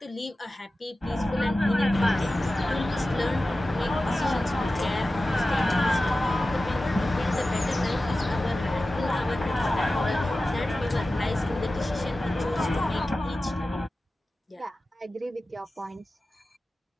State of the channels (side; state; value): both; normal; correlation 0.95